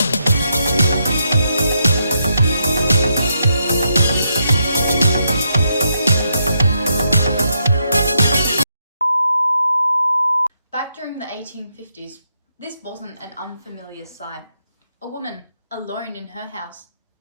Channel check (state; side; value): inverted; both; correlation -0.80